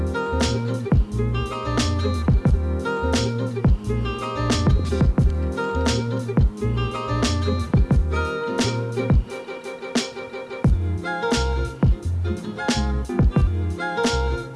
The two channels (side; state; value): both; identical; correlation 1.00